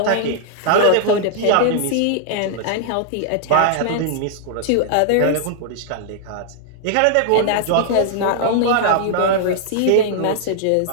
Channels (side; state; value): both; different; correlation -0.01